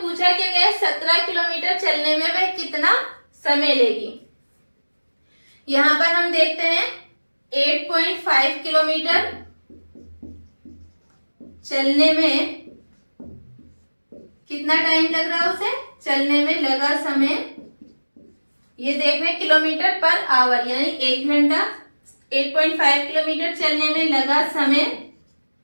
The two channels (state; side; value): inverted; both; correlation -1.00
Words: पूछा क्या गया, 17 किलोमीटर चलने में वह कितना समय लेगी। यहां पर हम देखते हैं 8.5 किलोमीटर चलने में कितना टाइम लग रहा है, उसे चलने में लगा समय, ये देख रहे हैं किलोमीटर पर आवर, यानी 1 घंटा 8.5 किलोमीटर चलने में लगा समय,